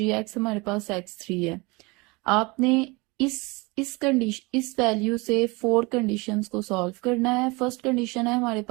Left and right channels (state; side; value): quieter; left; 25.8 dB